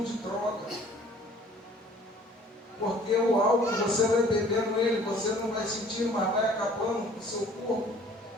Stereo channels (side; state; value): both; normal; correlation 0.53